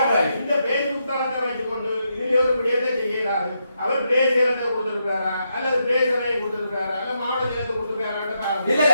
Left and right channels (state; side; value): inverted; both; correlation -0.81